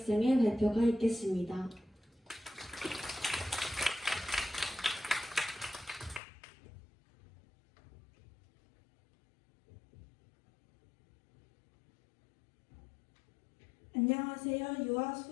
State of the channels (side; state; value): right; drops out; at 6.2 s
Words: 발표가 있겠습니다. 안녕하세요. 유아